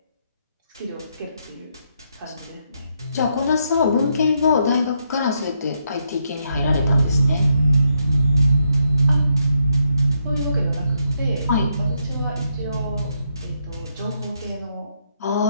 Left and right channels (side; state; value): both; inverted; correlation -0.79